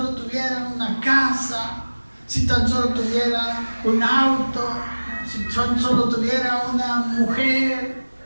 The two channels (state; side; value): inverted; both; correlation -1.00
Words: tuviera una casa, si tan solo tuviera un auto, si tan solo tuviera una mujer,